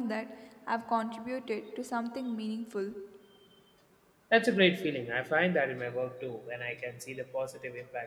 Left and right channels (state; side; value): identical; both; correlation 1.00